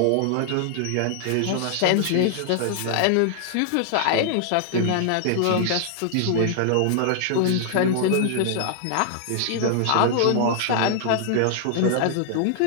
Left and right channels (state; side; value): different; both; correlation -0.01